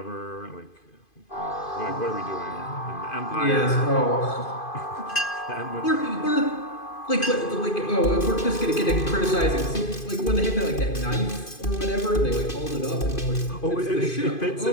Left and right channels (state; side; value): late; right; 2.5 ms